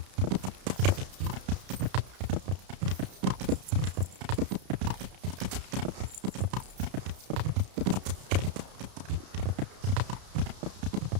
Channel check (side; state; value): left; late; 32 ms